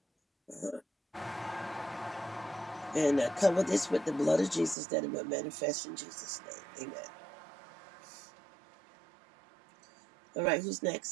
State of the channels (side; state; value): left; drops out; at 4.8 s